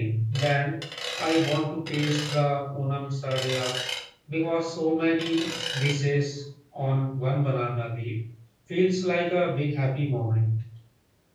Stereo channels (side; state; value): both; identical; correlation 1.00